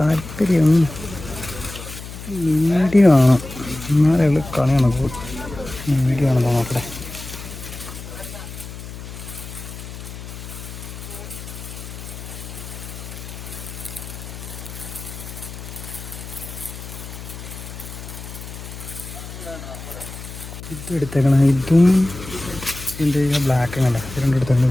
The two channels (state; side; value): noise; left; hum, 11 dB below the sound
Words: മീഡിയം ആണ്, എന്നാലും കളിയാണ്. മീഡിയം ആണെന്നോ നോക്കട്ടെ. ഇതും എടുത്തേക്കണം. ഇതും എൻ്റെ ബ്ലാക്ക് കണ്ട ഇത് രണ്ടും എടുത്തേക്കണം.